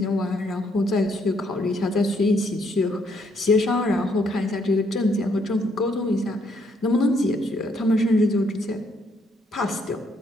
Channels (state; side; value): normal; both; correlation 0.71